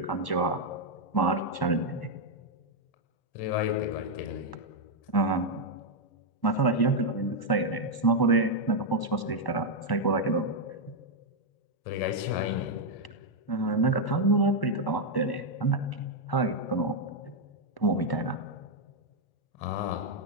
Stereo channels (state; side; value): late; right; 1.1 ms